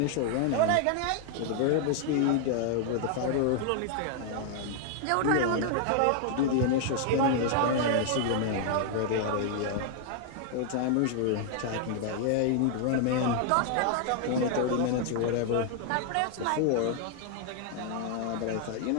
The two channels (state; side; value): different; both; correlation 0.00